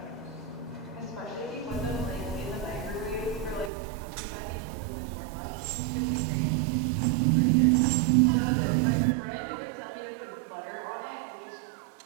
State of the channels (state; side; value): drops out; left; at 3.7 s